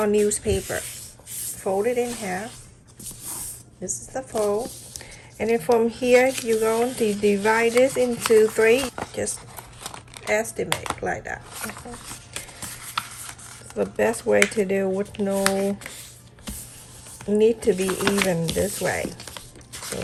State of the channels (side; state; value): both; identical; correlation 1.00